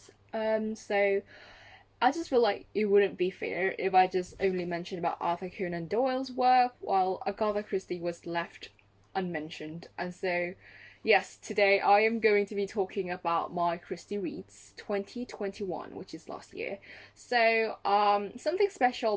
So I just feel like it wouldn't be fair if I just only mentioned about Arthur Conan Doyle's work while Agatha Christie was left unmentioned. And so yes, today I am going to be talking about my Christie Reads 2021, which is last year. So something special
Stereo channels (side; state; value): both; identical; correlation 1.00